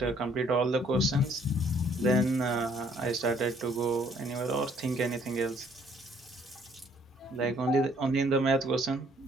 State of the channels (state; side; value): normal; both; correlation 0.63